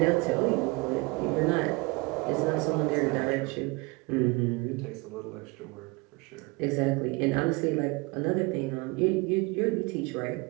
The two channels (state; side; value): quieter; left; 26.4 dB